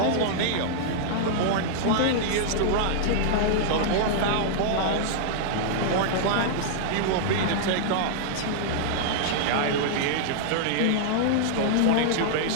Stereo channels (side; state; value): both; different; correlation -0.01